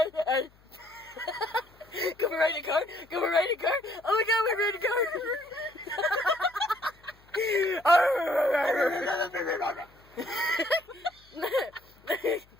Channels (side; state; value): left; noise; hum, 29 dB below the sound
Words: Can we ride a car? Can we ride a car? Oh my god, we're riding a car!